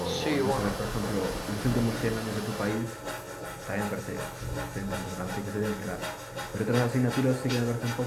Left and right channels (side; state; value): both; identical; correlation 1.00